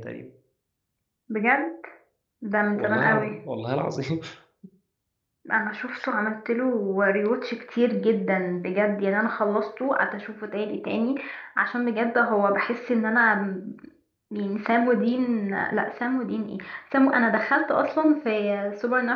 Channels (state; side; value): identical; both; correlation 1.00